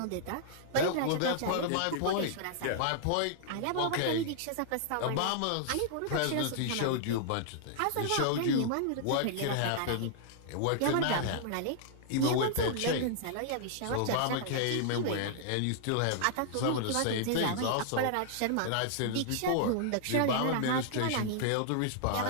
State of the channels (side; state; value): both; different; correlation -0.01